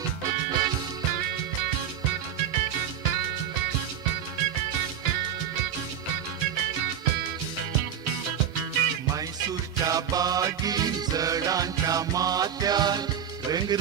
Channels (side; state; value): left; quieter; 8.7 dB